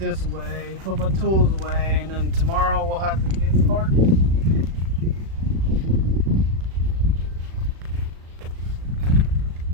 away, put my tools away, and then tomorrow we'll have to get started.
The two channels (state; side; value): late; left; 36 ms